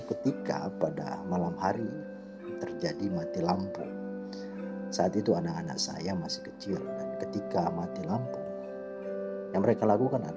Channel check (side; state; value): both; identical; correlation 1.00